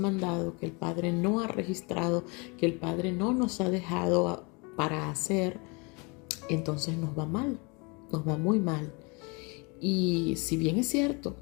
que el Padre no ha registrado, que el Padre no nos ha dejado para hacer. Entonces nos va mal, nos va muy mal. Y si bien es cierto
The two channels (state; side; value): quieter; right; 30.1 dB